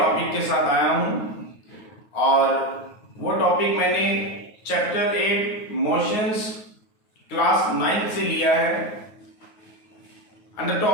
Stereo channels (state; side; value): late; right; 9.4 ms